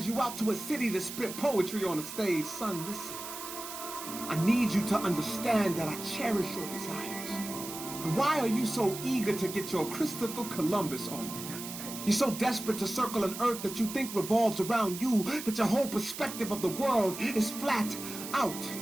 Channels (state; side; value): noise; right; hiss, 9 dB below the sound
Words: you out to a city to spit poetry on a stage. Son, listen. I need you to understand that I cherish your desires. But why are you so eager to get your Christopher Columbus on? You're so desperate to circle an earth that you think revolves around you, that your whole perspective of the world is flat out